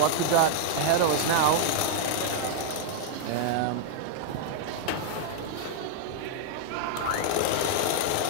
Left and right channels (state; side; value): different; both; correlation -0.01